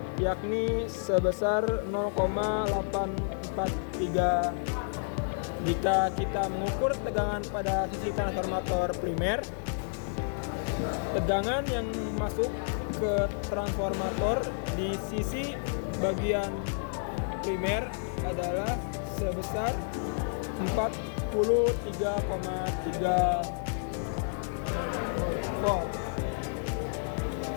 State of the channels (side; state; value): right; silent; digital silence